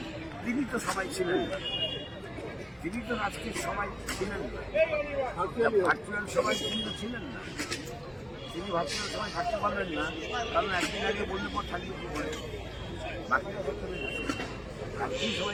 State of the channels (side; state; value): both; identical; correlation 1.00